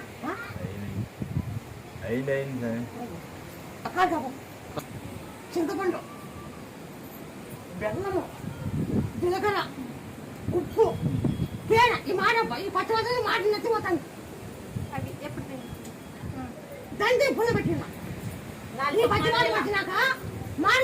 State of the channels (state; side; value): identical; both; correlation 1.00